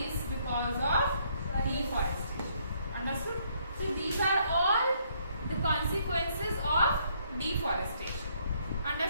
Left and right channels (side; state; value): both; inverted; correlation -0.69